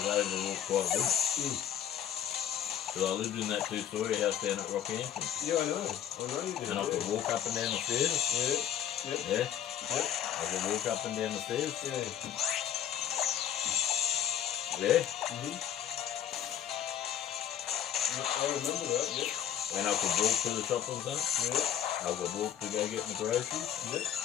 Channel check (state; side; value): quieter; right; 10.1 dB